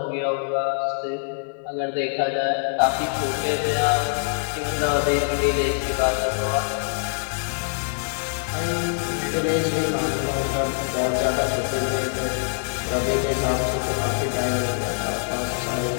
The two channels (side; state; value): right; silent; digital silence